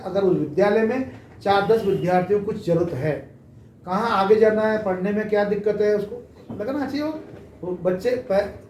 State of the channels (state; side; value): identical; both; correlation 1.00